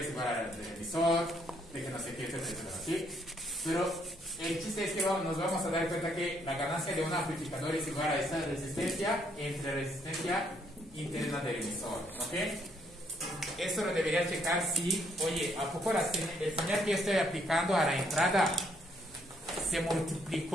igual al del emisor, de que no sé qué, etcétera, ¿sí? Pero el chiste es que nos vamos a dar cuenta que la ganancia de un amplificador es igual a esta resistencia entre la resistencia interna del emisor, ¿ok? Esto lo debería checar si, oye, ¿a poco el señal que estoy aplicando a la entrada se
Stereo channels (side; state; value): both; normal; correlation 0.70